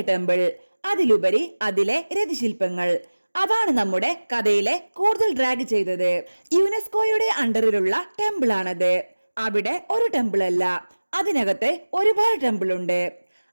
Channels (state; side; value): inverted; both; correlation -1.00